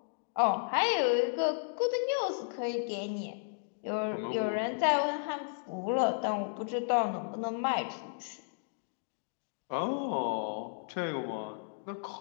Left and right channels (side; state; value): right; silent; digital silence